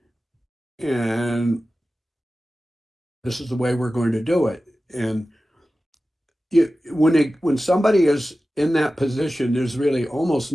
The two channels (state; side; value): normal; both; correlation 0.95